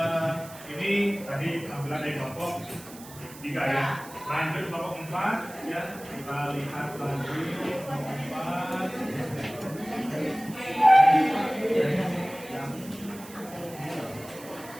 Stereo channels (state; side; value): noise; right; hiss, 18 dB below the sound